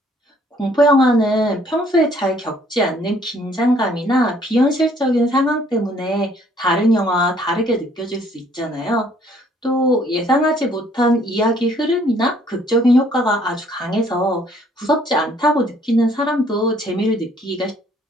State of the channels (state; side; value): normal; both; correlation 0.62